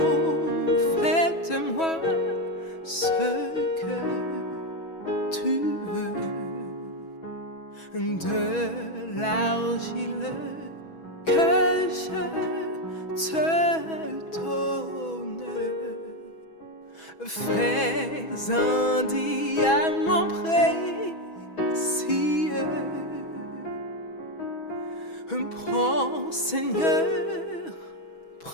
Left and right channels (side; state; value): right; late; 6.2 ms